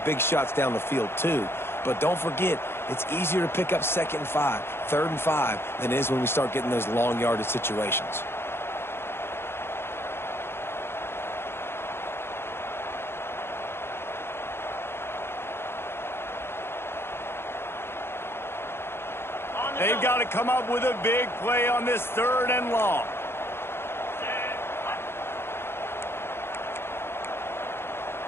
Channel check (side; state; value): right; late; 0.11 ms